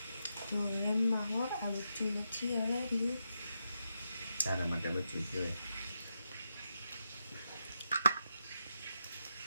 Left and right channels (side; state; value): both; inverted; correlation -0.85